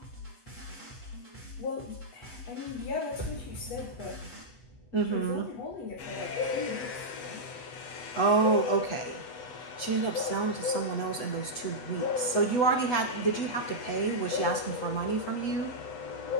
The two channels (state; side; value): late; right; 8.1 ms